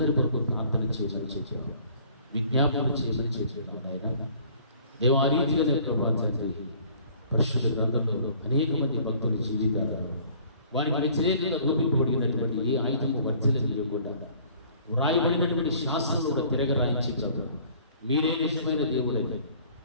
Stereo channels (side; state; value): both; inverted; correlation -0.54